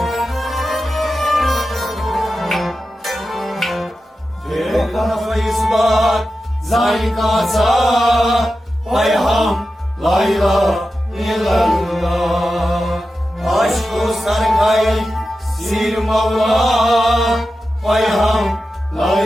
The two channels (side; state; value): both; normal; correlation 0.92